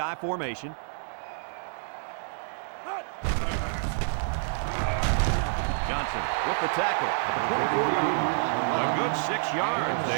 formation. Johnson with the tackle at the 24-yard line. A good 6 yards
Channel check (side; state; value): left; silent; digital silence